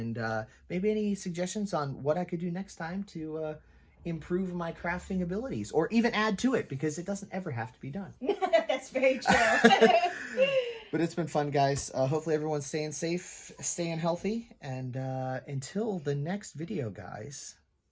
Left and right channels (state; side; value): identical; both; correlation 1.00